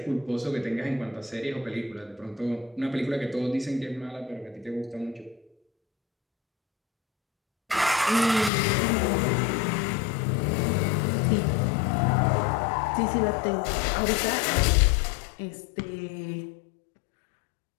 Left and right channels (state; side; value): drops out; right; at 8.5 s